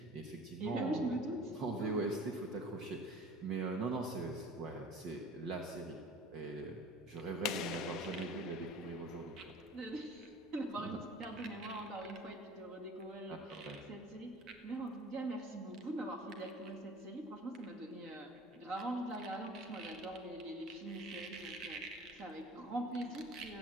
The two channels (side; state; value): both; normal; correlation 0.44